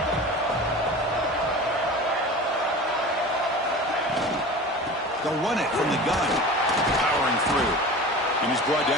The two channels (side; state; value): both; normal; correlation 0.36